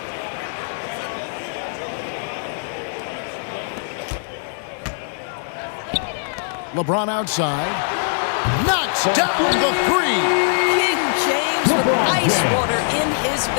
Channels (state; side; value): silent; right; 61 dB below the other